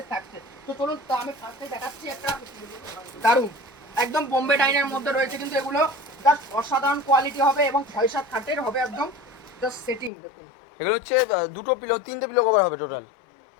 থাকছে। তো চলুন তো আমি ফার্স্টে দেখাচ্ছি একটা দারুন একদম বোম্বে ডাইনের মধ্যে রয়েছে কিন্তু এগুলো জাস্ট অসাধারণ কোয়ালিটি হবে এবং 6-7 খাটের হবে একদম জাস্ট সেটিং। দেখুন এগুলো হচ্ছে দুটো পিলো, তিনটে পিলো কভার হবে টোটাল,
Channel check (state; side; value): drops out; right; at 10.1 s